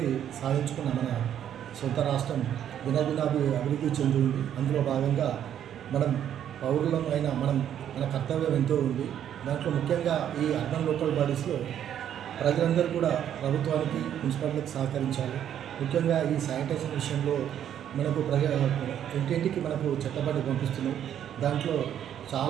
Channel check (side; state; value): left; quieter; 10.0 dB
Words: సాధించుకున్న మన సొంత రాష్ట్రం అభివృద్ధి చెందింది. అందులో భాగంగా మనం పౌరులం అయిన మన కర్తవ్యం ఎంతో ఉంది. దాంట్లో ముఖ్యంగా ఈ అర్బన్ లోకల్ బాడీస్లో ప్రజలందరూ కూడా ప్రభుత్వానికి మున్సిపాలిటీకి సహకరించాలి. ముఖ్యంగా ఈ శానిటైజేషన్ విషయంలో మనకు ఇంటింటికి మనకు చెత్తబండి పంపిస్తున్నాం. దాంట్లో